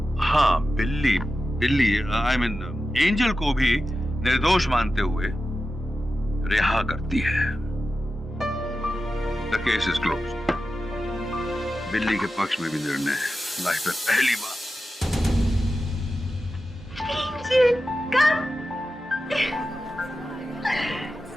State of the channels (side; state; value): both; normal; correlation 0.92